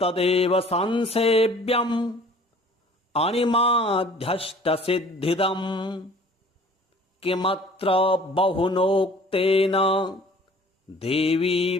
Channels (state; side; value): normal; both; correlation 0.50